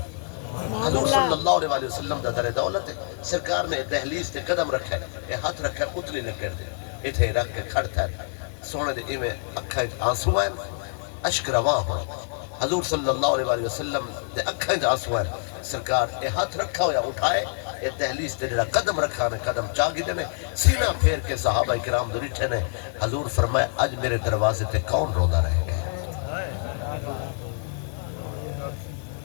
حضور صلی اللہ علیہ وسلم دا در دولت ہے، سرکار نے دہلیز تے قدم رکھا ہے، یہ ہاتھ رکھا ہے اتنی لکڑ تے اتھے رکھ کے کھڑتا ہے سونے دے ایویں اکھاں وچ آنسو ہیں اشک رواں ہو حضور صلی اللہ علیہ وسلم دے اکھاں وچ آنسو ہیں سرکار یہ ہاتھ رکھا ہویا اٹھائے یہ دہلیز تے جڑا قدم رکھا نے قدم چاگی دے نے سینہ پھیر کے صحابہ کرام دے ڈٹھے نے حضور فرمایا اج میرے دروازے تے کون روندا رہے گا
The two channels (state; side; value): silent; right; digital silence